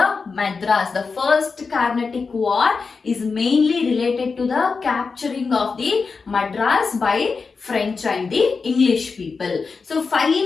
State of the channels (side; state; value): right; quieter; 4.8 dB